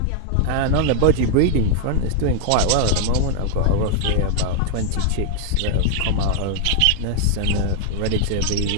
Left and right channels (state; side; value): different; both; correlation 0.00